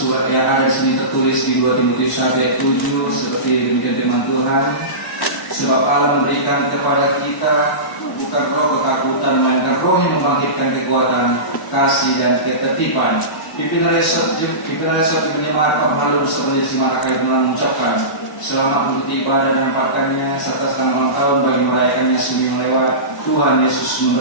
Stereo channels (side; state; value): right; late; 1.0 ms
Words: yang ada di sini tertulis di 2 Timotius 1 ayat 7 seperti demikian firman Tuhan. Sebab Allah memberikan kepada kita bukan roh ketakutan, melainkan roh yang membangkitkan kekuatan, kasih dan ketertiban. Pimpinan resort menyemat Ormalu beserta Simak akan mengucapkan selamat mengikuti ibadah dan pakannya serta selamat ulang tahun bagi merayakannya seminggu lewat. Tuhan Yesus